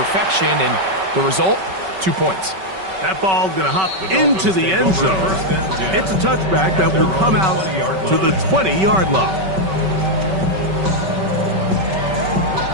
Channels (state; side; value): late; left; 5.3 ms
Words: and the result, 2 points. That ball going to hop into the end zone. It's a touchback that will come out to the 20-yard line.